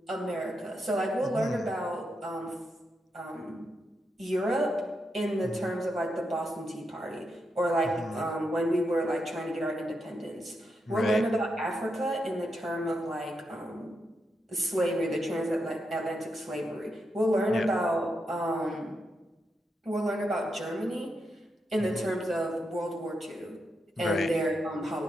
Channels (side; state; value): both; normal; correlation 0.84